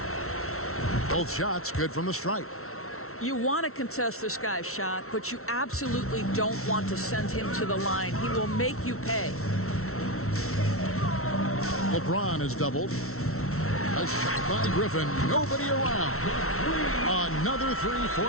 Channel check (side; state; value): right; late; 0.63 ms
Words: Both shots good from the stripe. You want to contest this guy's shot, but you absolutely don't want to send him to the line. He will make you pay. LeBron is doubled. A shot by Griffin. Nobody around. Another 3